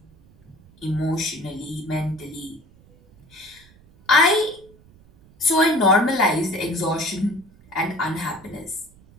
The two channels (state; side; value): noise; right; rumble, 27 dB below the sound